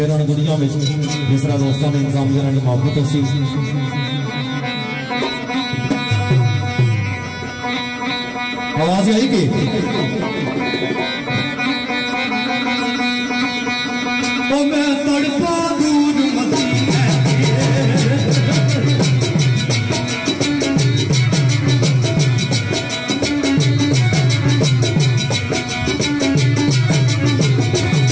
दुनिया में जिस तरह दोस्तों ने इंतजाम करने की मोहब्बत सी। आवाज आई कि तो मैं तड़पा दूर मती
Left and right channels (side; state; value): both; identical; correlation 1.00